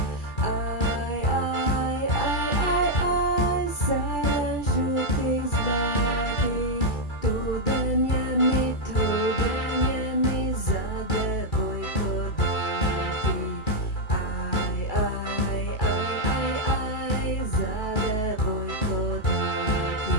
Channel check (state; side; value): late; right; 2.3 ms